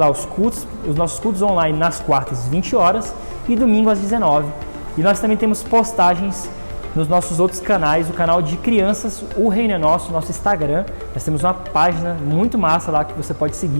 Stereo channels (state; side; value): inverted; both; correlation -1.00